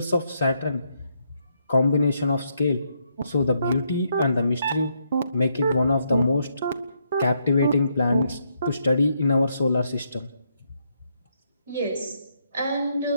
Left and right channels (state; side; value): inverted; both; correlation -0.76